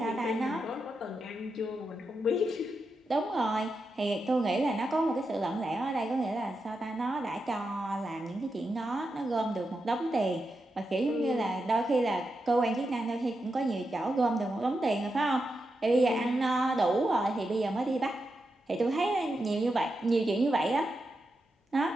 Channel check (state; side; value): normal; both; correlation 0.87